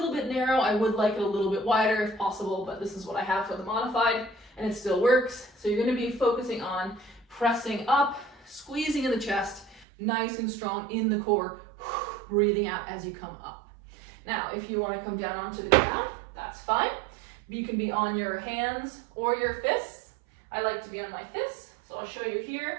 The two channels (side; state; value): left; drops out; at 9.9 s